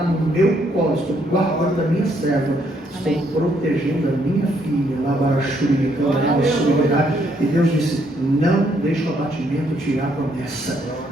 no meu colo. Estou guardando a minha serva. Estou Amém. protegendo a minha filha. E Deus disse: não deixe o abatimento tirar a promessa.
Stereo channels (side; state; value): both; normal; correlation 0.71